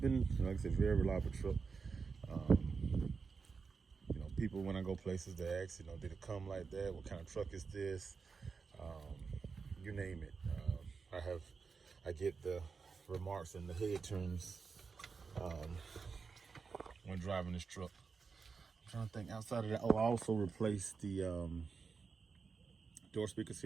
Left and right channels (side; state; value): left; quieter; 5.1 dB